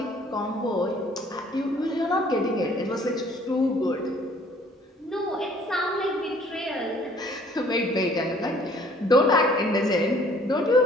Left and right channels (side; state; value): both; normal; correlation 0.57